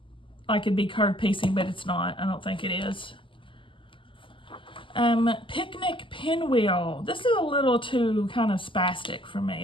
like it'd be curved piecing, but it's not. I don't think it is. Picnic Pinwheel. This is a little too kind of spastic for me.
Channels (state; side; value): late; right; 0.25 ms